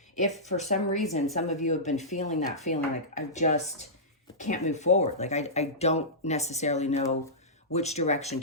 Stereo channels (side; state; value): both; normal; correlation -0.16